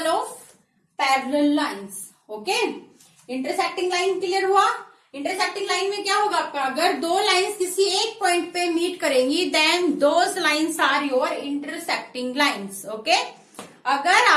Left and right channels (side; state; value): both; identical; correlation 1.00